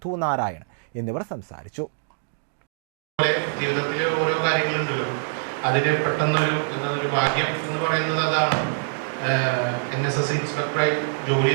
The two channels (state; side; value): silent; left; 58 dB below the other